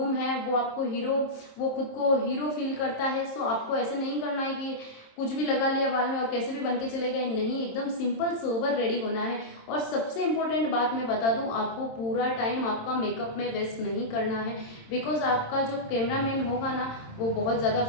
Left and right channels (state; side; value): late; right; 26 ms